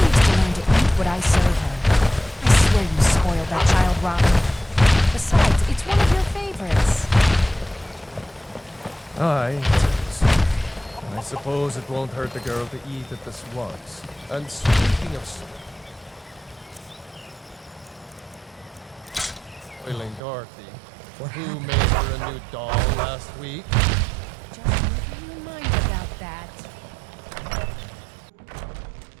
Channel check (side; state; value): left; drops out; at 20.2 s